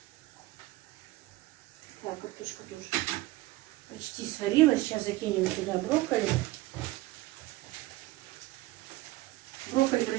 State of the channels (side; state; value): left; quieter; 18.6 dB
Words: Так, картошка тоже почти сварилась. Сейчас закинем сюда брокколи. Брокколи,